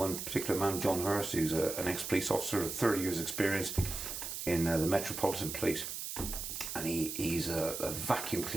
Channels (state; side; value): noise; right; hiss, 5 dB below the sound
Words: particular man, John Hurst, who's an ex-police officer with 30 years' experience in the Metropolitan Police. And he's a vacuum